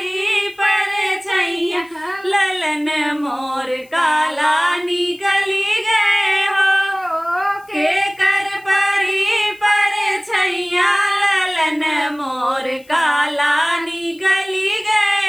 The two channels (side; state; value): left; noise; hiss, 29 dB below the sound